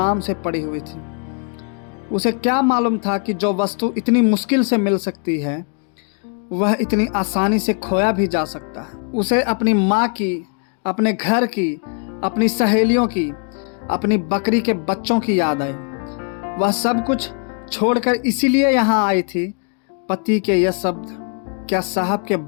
से पड़ी हुई थी। उसे क्या मालूम था कि जो वस्तु इतनी मुश्किल से मिल सकती है, वह इतनी आसानी से खोया भी जा सकता है। उसे अपनी माँ की, अपने घर की, अपनी सहेलियों की, अपनी बकरी के बच्चों की याद आई। वह सब कुछ छोड़कर इसीलिए यहाँ आई थी। पति के यह शब्द, क्या साहब के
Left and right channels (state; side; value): quieter; right; 39.8 dB